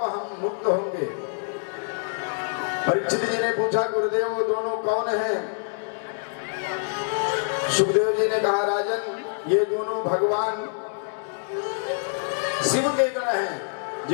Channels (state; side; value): silent; right; digital silence